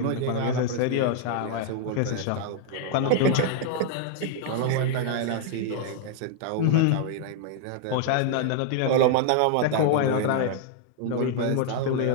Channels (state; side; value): different; both; correlation 0.00